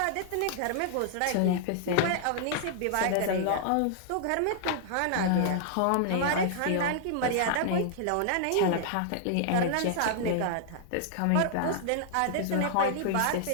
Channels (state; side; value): different; both; correlation -0.01